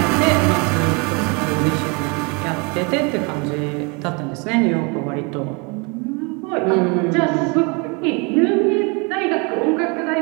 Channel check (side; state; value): left; quieter; 31.3 dB